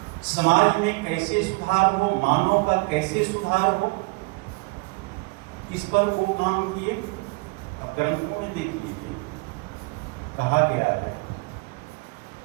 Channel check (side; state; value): left; quieter; 27.6 dB